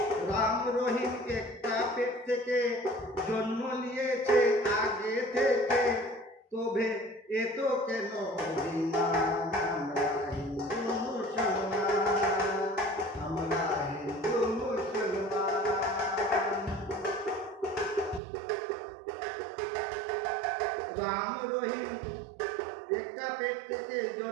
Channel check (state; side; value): drops out; left; at 18.2 s